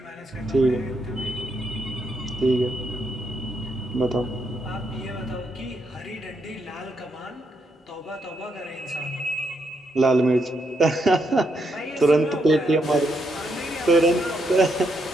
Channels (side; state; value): both; normal; correlation 0.78